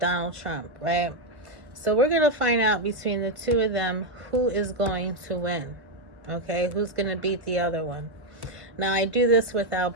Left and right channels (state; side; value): late; left; 1.3 ms